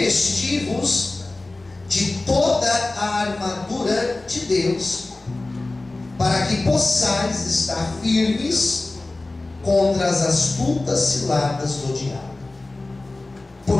de toda a armadura de Deus, para que possais estar firmes contra as astutas ciladas do diabo.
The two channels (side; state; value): right; quieter; 3.0 dB